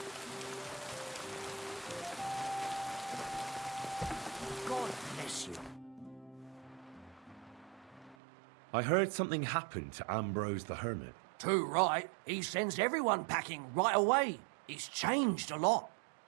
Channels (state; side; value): drops out; left; at 8.2 s